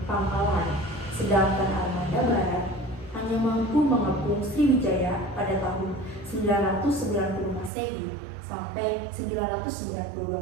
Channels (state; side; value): drops out; left; at 7.7 s